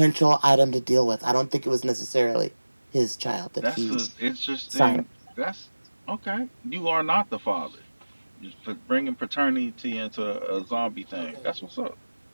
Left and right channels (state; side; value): inverted; both; correlation -1.00